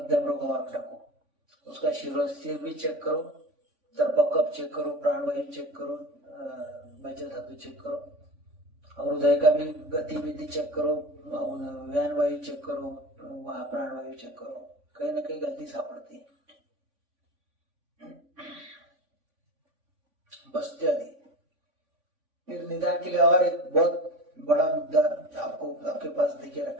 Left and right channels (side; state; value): left; late; 3.5 ms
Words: रोग मार्ग डाको, उसका सिर भी चेक करो, तर्पकप चेक करो, प्राणवायु चेक करो, मज्जा धातु चेक करो, और हृदय का भी गतिविधि चेक करो, व्यान वायु चेक करो, वहां प्राणवायु चेक करो, कहीं ना कहीं गलती सापड़ती है। बस्ती आदि। फिर निदान के लिए और एक बहुत बड़ा मुद्दा आपको आपके पास देखे